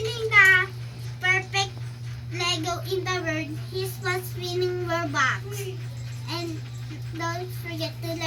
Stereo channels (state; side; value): identical; both; correlation 1.00